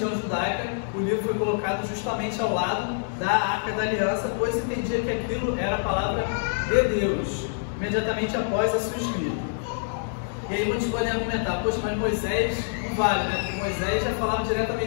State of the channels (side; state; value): right; silent; digital silence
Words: judaica. O livro foi colocado justamente ao lado da arca da aliança, pois entendia que aquilo era a palavra de Deus, imediatamente após a sua escrita. E aí muitos podem argumentar, poxa, mas Moisés não vale, né? Porque Moisés já falava